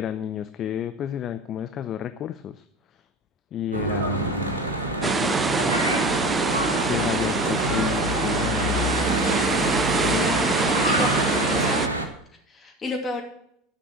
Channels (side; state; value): both; normal; correlation 0.32